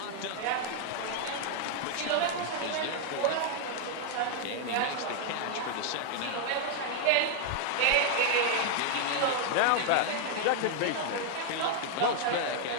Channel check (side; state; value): both; different; correlation 0.00